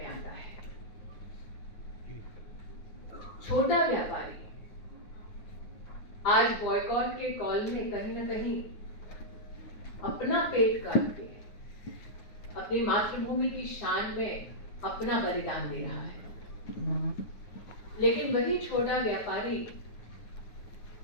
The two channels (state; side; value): late; right; 9.5 ms